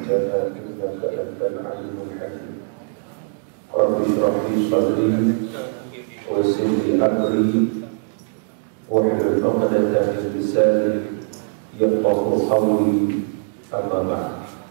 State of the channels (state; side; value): silent; left; digital silence